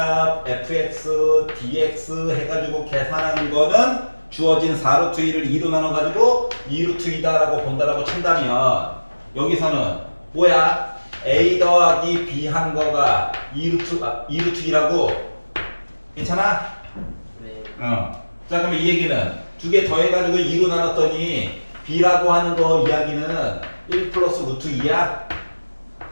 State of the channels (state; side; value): inverted; both; correlation -1.00